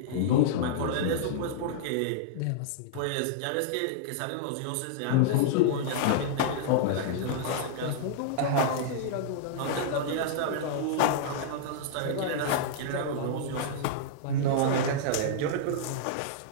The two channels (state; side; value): different; both; correlation -0.02